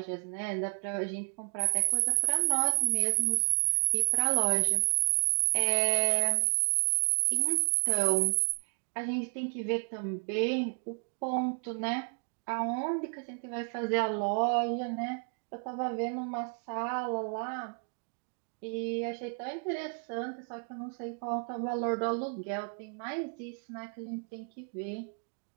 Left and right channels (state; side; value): quieter; left; 39.7 dB